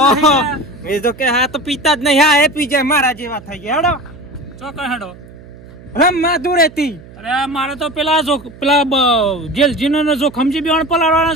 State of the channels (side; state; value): right; noise; hum, 20 dB below the sound